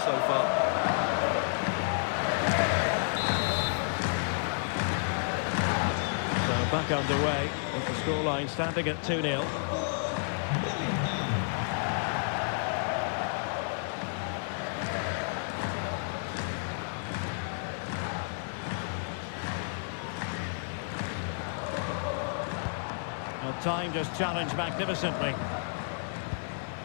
far. So back underway, with the scoreline standing at 2-0. Well, time just challenged magnificently.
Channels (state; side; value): silent; right; digital silence